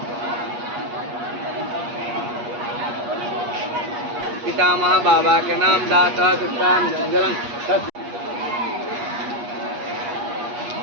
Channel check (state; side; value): late; left; 8.4 ms